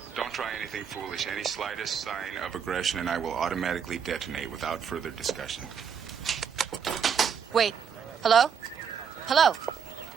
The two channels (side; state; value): left; quieter; 7.2 dB